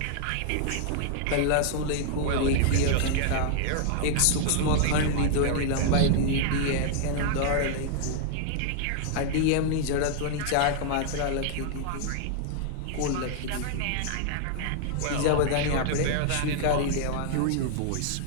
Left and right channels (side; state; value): both; different; correlation -0.01